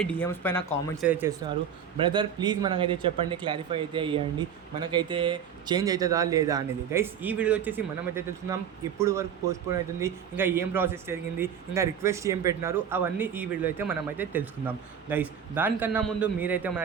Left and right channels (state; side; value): quieter; left; 8.1 dB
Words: డిఎమ్స్ పైన కామెంట్స్ అయితే చేస్తున్నారు. బ్రదర్ ప్లీజ్ మనకైతే చెప్పండి, క్లారిఫై అయితే ఇవ్వండి, మనకైతే చేంజ్ అవుతుందా లేదా అనేది. గైస్, ఈ వీడియో వచ్చేసి మనమైతే తెలుసుకుందాం ఇప్పుడు వరకు పోస్ట్ పోన్ అవుతుంది, ఇంకా ఏం ప్రాసెస్ జరిగింది, ఇంకా రిక్వెస్ట్ ఏం పెట్టినారు, అవన్నీ ఈ వీడియో అయితే మనమైతే తెలుసుకుందాం. గైస్, దానికన్నా ముందు మీరైతే మన